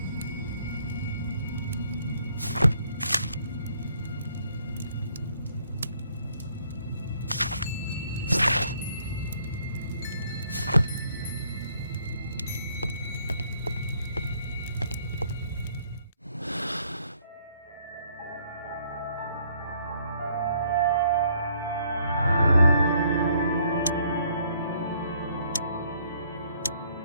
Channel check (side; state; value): both; inverted; correlation -0.66